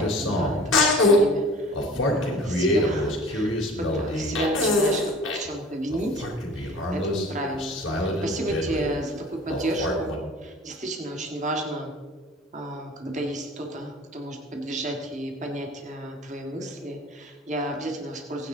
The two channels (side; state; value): both; normal; correlation 0.44